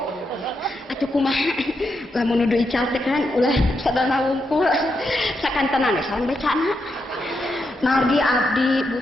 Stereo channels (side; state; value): both; normal; correlation 0.83